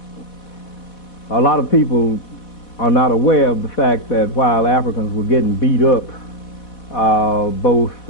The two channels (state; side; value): late; right; 4.1 ms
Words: A lot of people are not aware of the fact that while Africans were getting beat up, both